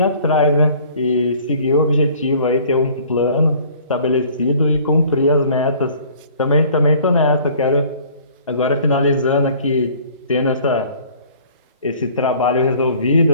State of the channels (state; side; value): inverted; both; correlation -0.53